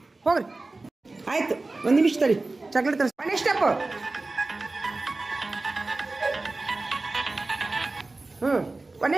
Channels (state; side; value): quieter; left; 3.3 dB